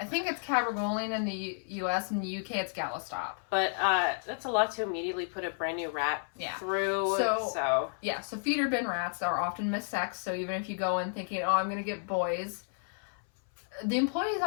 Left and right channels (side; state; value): right; silent; 56 dB below the other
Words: think it's cabergoline in the U.S. In the U.K. it's Galistop. But that's a lot to immediately put a brand new rat through. So feeder bin rats are often missexed. So even if you go in thinking, oh, I'm going to get boys, the employees